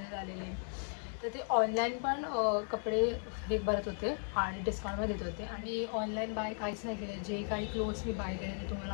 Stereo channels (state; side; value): silent; right; 54 dB below the other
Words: झालेले. तर ते ऑनलाईन पण कपडे हे भरत होते आणि डिस्काउंटमध्ये देत होते. आणि ऑनलाईन बाय काहीच नाही केलं. जे काही क्लोथ्स मी बाय केले ते तुम्हाला